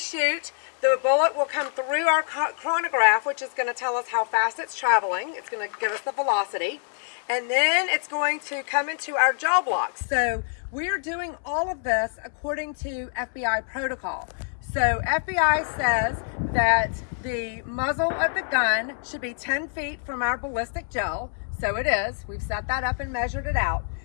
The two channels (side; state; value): right; silent; 61 dB below the other